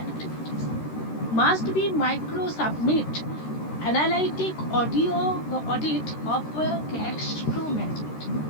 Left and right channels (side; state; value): right; late; 13 ms